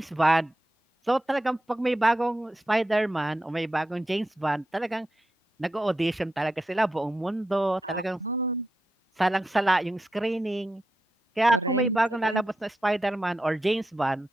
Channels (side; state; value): both; normal; correlation 0.87